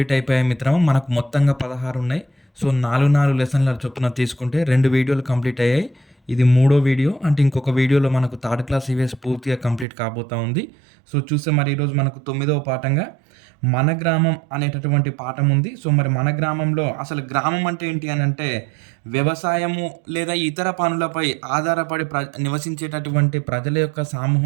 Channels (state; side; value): drops out; left; at 9.9 s